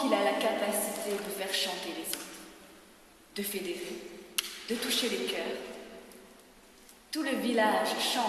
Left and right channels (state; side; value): identical; both; correlation 1.00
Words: a la capacité de faire chanter les autres, de fédérer, de toucher les cœurs. Tout le village